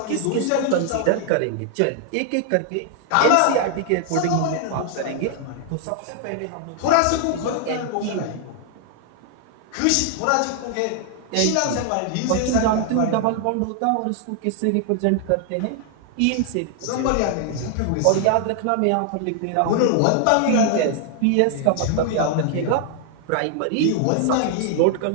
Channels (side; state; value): both; different; correlation 0.00